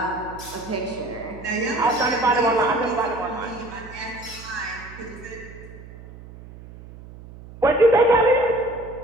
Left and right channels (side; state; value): right; noise; hum, 17 dB below the sound